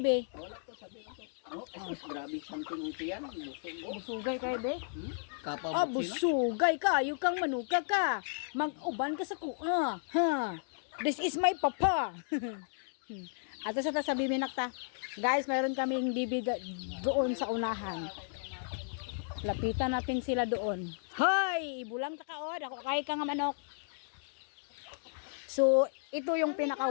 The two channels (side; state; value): right; silent; digital silence